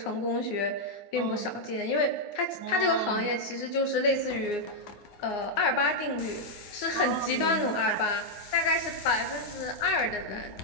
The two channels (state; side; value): late; right; 9.6 ms